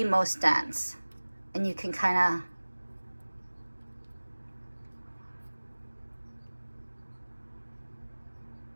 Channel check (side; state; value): both; inverted; correlation -1.00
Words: most dense. And you can kind of,